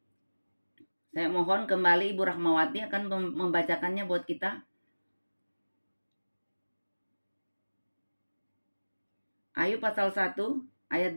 Saya mohon kembali Ibu Rahmawati akan membacakannya buat kita. Ayub pasal 1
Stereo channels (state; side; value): inverted; both; correlation -1.00